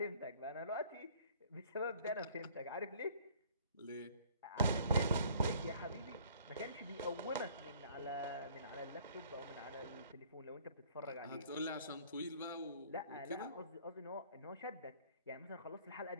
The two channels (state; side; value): inverted; both; correlation -0.56